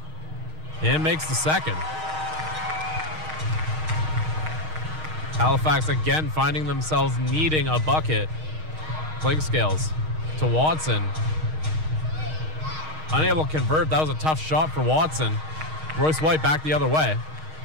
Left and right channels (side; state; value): left; late; 6.4 ms